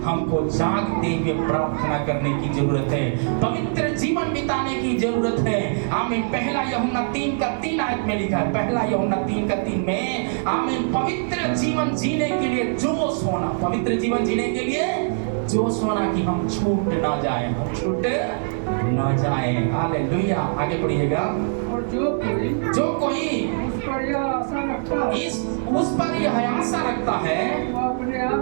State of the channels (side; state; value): left; silent; 64 dB below the other